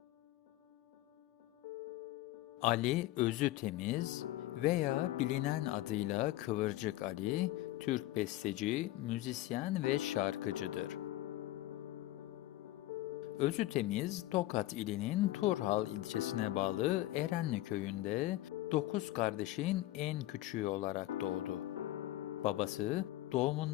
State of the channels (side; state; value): right; quieter; 16.1 dB